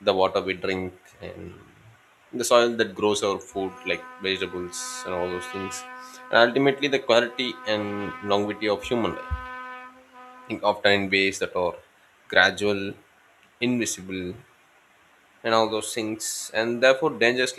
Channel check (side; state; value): both; identical; correlation 1.00